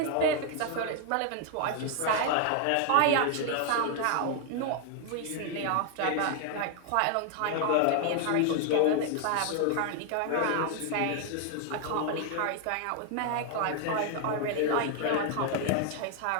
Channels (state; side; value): different; both; correlation 0.00